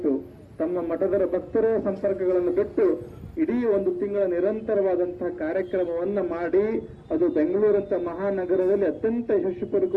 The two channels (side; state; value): both; identical; correlation 1.00